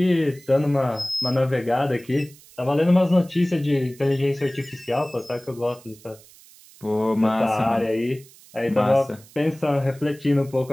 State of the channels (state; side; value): noise; right; hiss, 24 dB below the sound